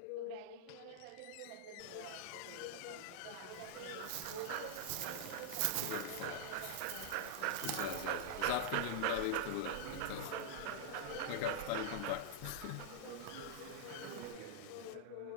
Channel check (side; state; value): both; different; correlation -0.01